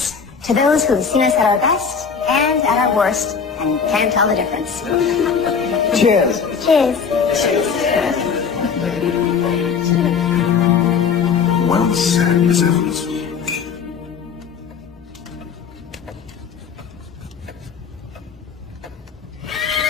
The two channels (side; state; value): right; quieter; 6.2 dB